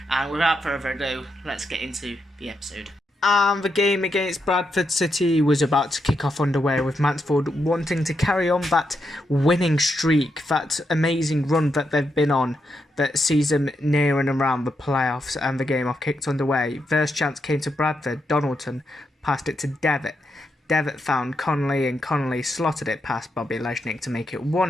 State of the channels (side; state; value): both; normal; correlation 0.82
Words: And without further ado, let's get into the episode. And the game against Bradford City was about to kick off underway, with Mansfield wanting to carry on that winning streak, that amazing run that they've been on that sees them near and around the playoffs, and the game off kicked underway. First chance came to Bradford. Donaldson passed it to Devitt. Devitt found Connolly, and Connolly slotted it past Bobby Leshnick to make it